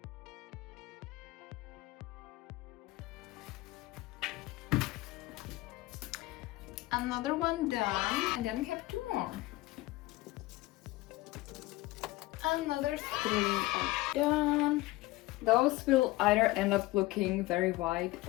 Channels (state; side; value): quieter; right; 19.1 dB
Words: Another one done, and then we have 2 more. Another 3 are done. Those will either end up looking very white